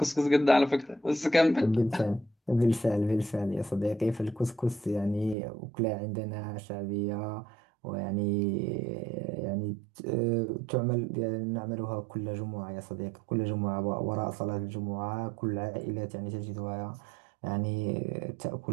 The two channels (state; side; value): drops out; left; at 5.4 s